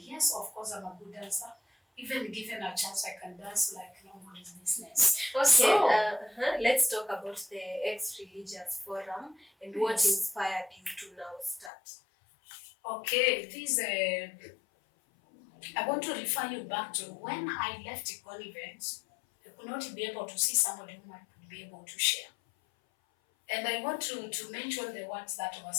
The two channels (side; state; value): right; drops out; at 11.7 s